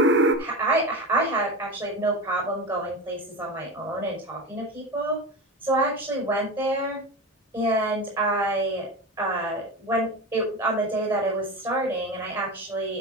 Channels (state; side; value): normal; both; correlation 0.24